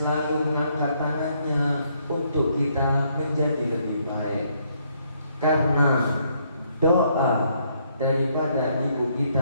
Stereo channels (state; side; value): inverted; both; correlation -0.71